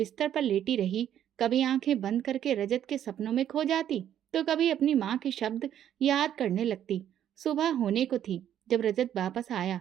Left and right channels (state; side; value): quieter; left; 10.5 dB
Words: पर लेटी रही। कभी आंखें बंद करके रजत के सपनों में खो जाती, तो कभी अपनी माँ के शब्द याद करने लगती। सुबह होने को थी जब रजत वापस आया।